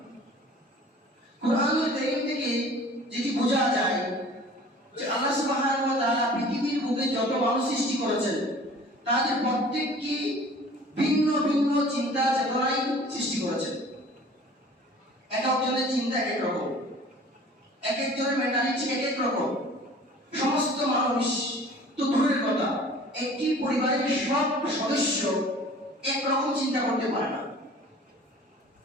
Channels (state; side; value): normal; both; correlation 0.47